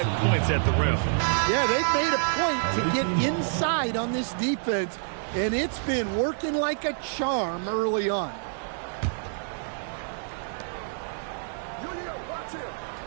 points at the rim. Yeah, they've made a point to get inside on this defense, and it's been working like a charm early on.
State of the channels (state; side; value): silent; left; digital silence